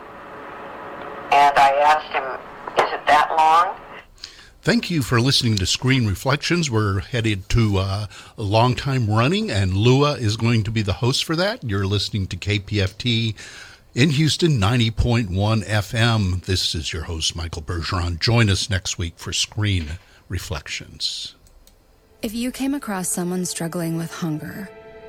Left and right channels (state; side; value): identical; both; correlation 1.00